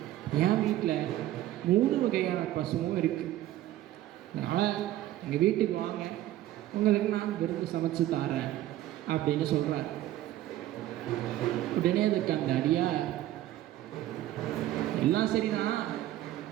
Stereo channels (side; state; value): left; quieter; 14.1 dB